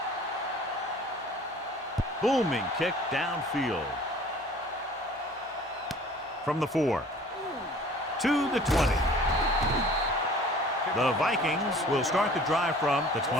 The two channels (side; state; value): both; normal; correlation 0.48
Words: Booming kick downfield. From the 4 to the 20. The Vikings will start the drive from the